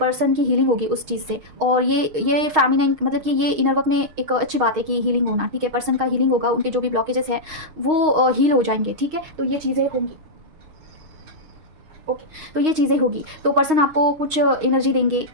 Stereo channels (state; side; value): late; left; 6.4 ms